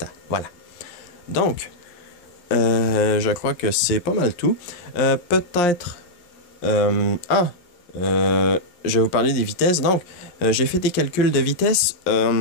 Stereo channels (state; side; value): late; right; 11 ms